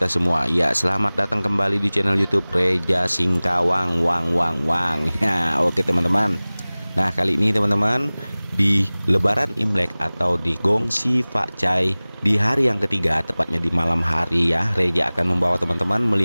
semua. Ya, selamat datang kembali di channel YouTube Reza Singkawang Wang. Ya, oke teman-teman. Nah, kali ini teman-teman, di Lebaran Imlek atau di Gongsi Fakcai di hari yang ketiga, tepatnya di malam hari ya, Reza akan membawa teman-teman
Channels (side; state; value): both; inverted; correlation -0.99